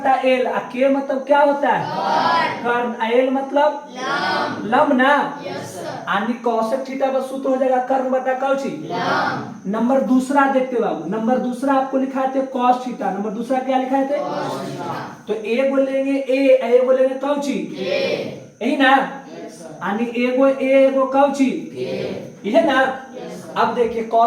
एल, के मतलब क्या होता है कर्म, एल मतलब लंब ना, यानी कोसेक थीटा का सूत्र हो जाएगा कर्म बटा कौची। नंबर दूसरा देखते बाबू, नंबर दूसरा आपको लिखा थे कॉस थीटा, नंबर दूसरा क्या लिखा थे तो ए बोलेंगे ए बोलेंगे कौची यही ना, यानी एगो एगो कौची यह ना। अब देखिए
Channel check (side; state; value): both; identical; correlation 1.00